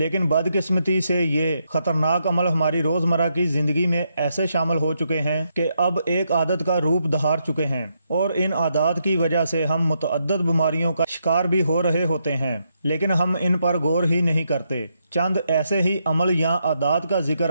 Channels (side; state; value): both; inverted; correlation -0.79